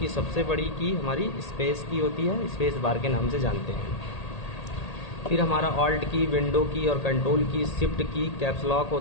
सबसे बड़ी की हमारी स्पेस की होती है, स्पेस बार के नाम से जानते हैं। फिर हमारा ऑल्ट की, विंडो की और कंट्रोल की, शिफ्ट की, कैप्स लॉक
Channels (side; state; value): right; late; 1.8 ms